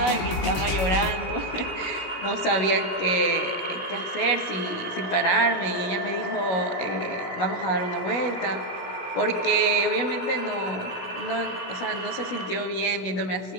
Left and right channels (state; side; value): late; right; 17 ms